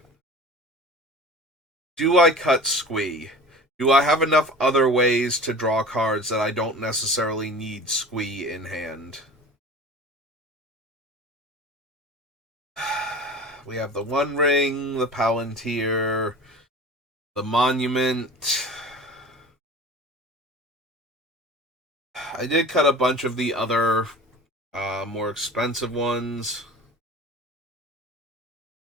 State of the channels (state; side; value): normal; both; correlation 0.39